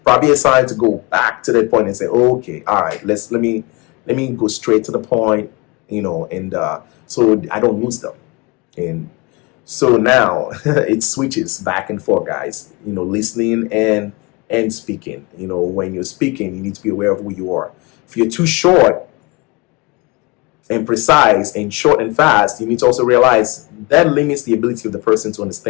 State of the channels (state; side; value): quieter; right; 26.4 dB